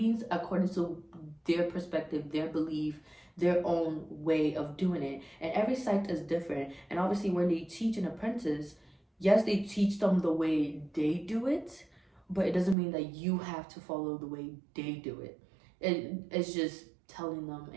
according to their perspective, their belief, their own way of doing it. And every psych is different. And obviously, when they teach an apprentice, yes, they teach them the way they do it, but it doesn't mean that you have to follow the way they do it. It's just telling them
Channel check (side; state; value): left; drops out; at 12.8 s